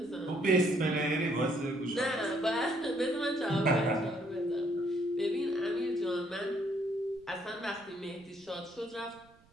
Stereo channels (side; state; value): right; noise; rumble, 30 dB below the sound